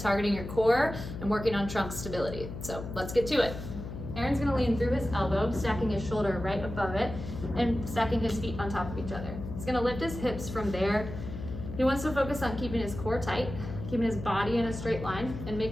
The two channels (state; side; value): noise; left; hum, 9 dB below the sound